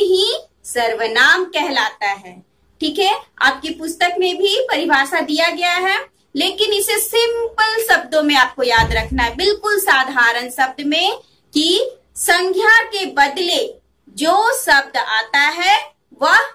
सर्वनाम कहलाता है। ठीक है, आपकी पुस्तक में भी परिभाषा दिया गया है, लेकिन इसे सिंपल शब्दों में आपको याद रखना है, बिल्कुल साधारण शब्द में, कि संज्ञा के बदले जो शब्द आता है वह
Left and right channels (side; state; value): both; identical; correlation 1.00